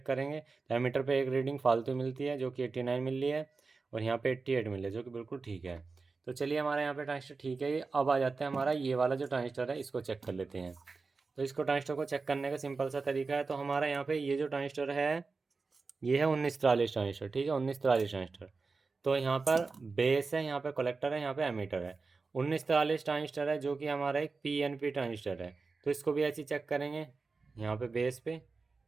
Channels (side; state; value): left; quieter; 4.2 dB